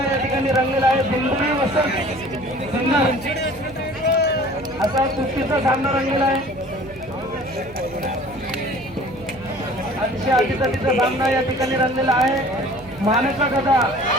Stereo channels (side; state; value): right; noise; hum, 20 dB below the sound